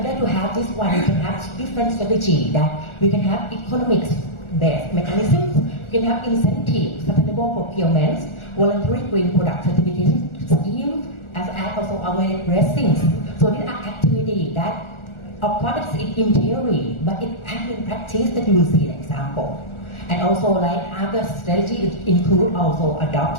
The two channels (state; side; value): late; right; 1.4 ms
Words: to have this one, we can have different strategy that we can have economics-based mechanisms, we can have incentives, sustainable procurements, voluntary green product certification scheme, as also awareness raisings. So these are activities that, of course, it's in theory, but it in practice that you will see an example. And also, like other strategies include also